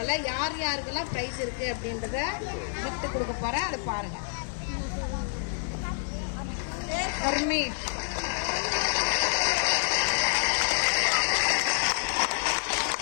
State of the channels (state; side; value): silent; right; digital silence